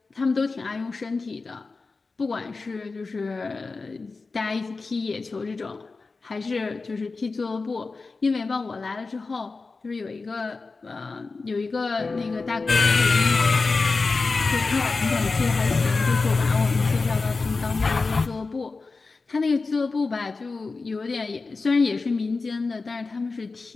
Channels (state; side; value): quieter; right; 4.0 dB